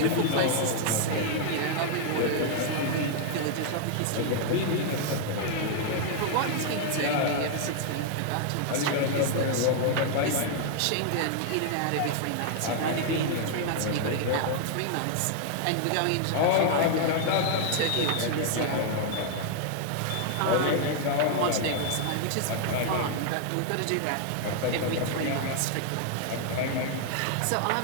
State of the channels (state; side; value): different; both; correlation 0.00